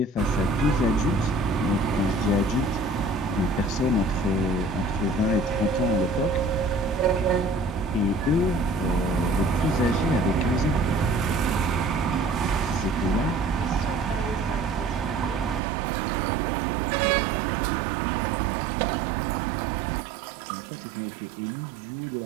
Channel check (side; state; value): left; drops out; at 15.6 s